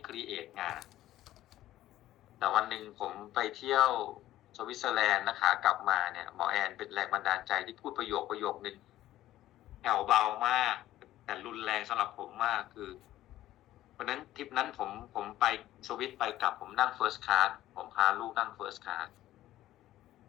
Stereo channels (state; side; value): quieter; right; 14.2 dB